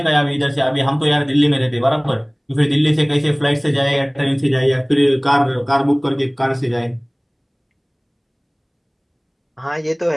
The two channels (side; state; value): both; identical; correlation 1.00